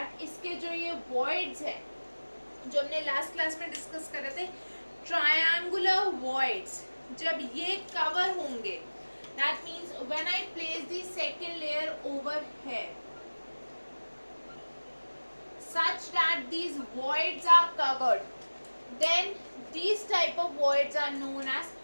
इसके जो ये voids है जो हमने last class में discuss कर रहे थे, ट्रायंगुलर voids, जब ये कवर होंगे, that means when I place the second layer over here such that these voids are covered, then these type of voids are known as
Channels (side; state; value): both; inverted; correlation -1.00